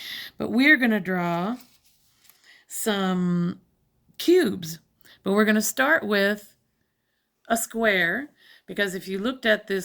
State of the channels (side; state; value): both; identical; correlation 1.00